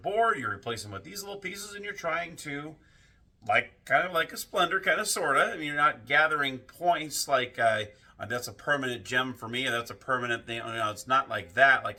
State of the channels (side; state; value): both; identical; correlation 1.00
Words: you replace them with these little pieces, and you're trying to, kind of like a Splendor, kind of, sort of. I mean, you're not gathering points like, that's a permanent gem for me, and that's a permanent thing. You know, it's not like that, like